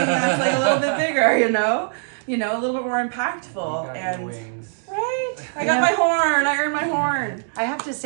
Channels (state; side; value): silent; left; 64 dB below the other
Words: like a little bit bigger, you know, a little bit more impactful. You got And your wings. right, I got my horn. I earned my horn. I have to